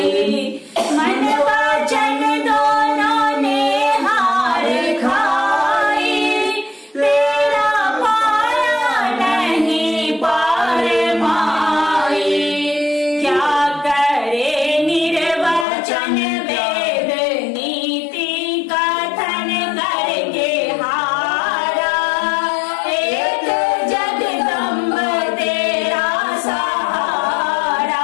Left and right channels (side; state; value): right; drops out; at 15.7 s